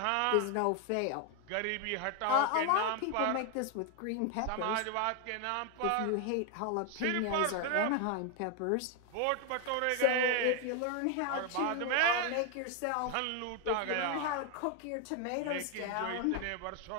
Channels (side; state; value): both; different; correlation 0.01